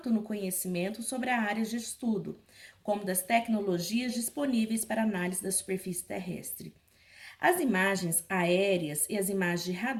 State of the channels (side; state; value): both; identical; correlation 1.00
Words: no conhecimento sobre a área de estudo, como das tecnologias disponíveis para análise da superfície terrestre. As imagens aéreas e as imagens de